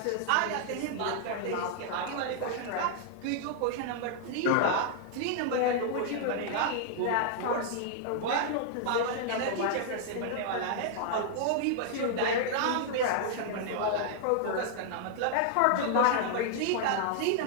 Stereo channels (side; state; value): both; different; correlation -0.01